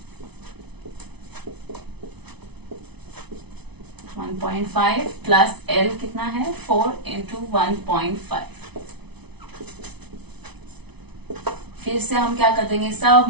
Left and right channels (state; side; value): late; left; 0.99 ms